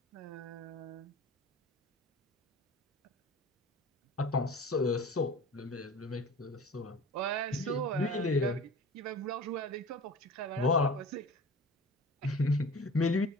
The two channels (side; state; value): both; normal; correlation 0.39